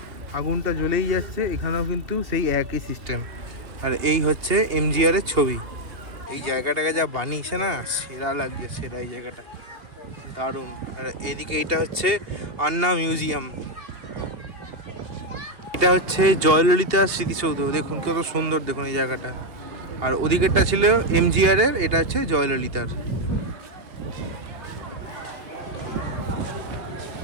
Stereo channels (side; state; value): left; late; 2.8 ms